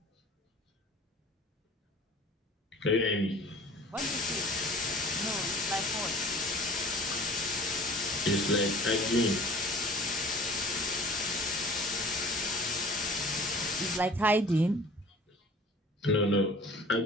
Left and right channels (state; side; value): normal; both; correlation 0.46